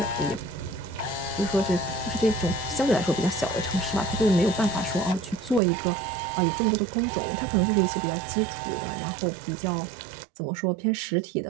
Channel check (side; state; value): left; drops out; at 5.6 s